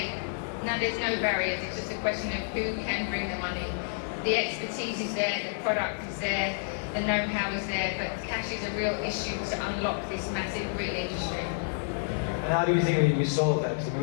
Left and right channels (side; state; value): right; silent; digital silence